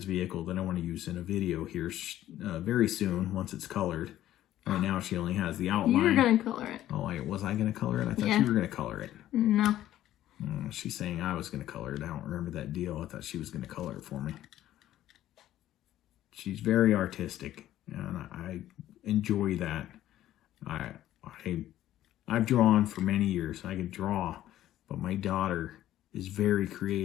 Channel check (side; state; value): right; quieter; 13.2 dB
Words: vehicle that I want to use in a video here very soon once it's colored. Right now she only has the outline. You're going to color it. Oh, was I going to color it? I thought you were going to color it. No. She's saying I was going to color it. I don't remember that deal. I thought she was going to color it for me. She's very artistic, and I enjoy that. I've drawn for many years. I can draw, but my daughter is very